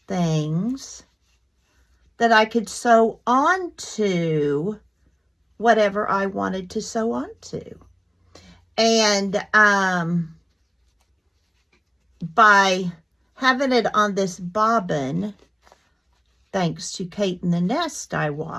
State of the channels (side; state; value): both; identical; correlation 1.00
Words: things that I could sew onto whatever I wanted to sew onto. And by having it on this bobbin, thanks to Kate in the Nest I